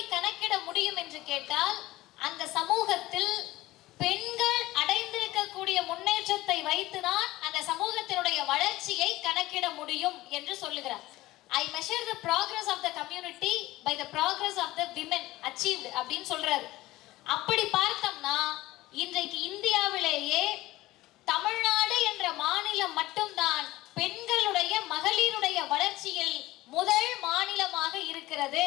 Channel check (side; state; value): right; quieter; 17.6 dB